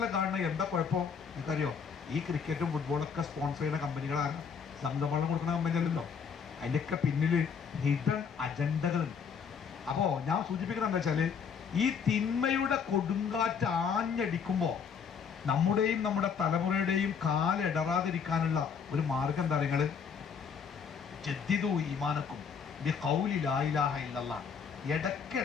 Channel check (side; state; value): right; quieter; 6.5 dB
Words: കാണുന്നത്, എന്താ കുഴപ്പം നിങ്ങൾക്കറിയോ? ഈ ക്രിക്കറ്റും ഫുട്ബോളൊക്കെ സ്പോൺസർ ചെയ്യുന്ന കമ്പനികളാണ്, സംഘവെള്ളം കൊടുക്കുന്ന കമ്പനി അല്ലല്ലോ. അതിൻ്റെയൊക്കെ പിന്നിൽ ഹിഡൻ അജണ്ടകളുണ്ട്. അപ്പോൾ ഞാൻ സൂചിപ്പിക്കുന്നത് എന്താ വെച്ചാൽ, ഈ തിന്മയുടെ കൊടുങ്കാറ്റ് ആഞ്ഞടിക്കുമ്പോൾ നമ്മുടെയും നമ്മുടെ തലമുറയുടെയും കാലിടറാതിരിക്കാനുള്ള ഒരു മാർഗം എന്താ നിങ്ങൾ? ജദ്ദിദു ഈമാനക്കും ബി ഖൗലി ലാ ഇലാഹ ഇല്ലല്ലാഹ്.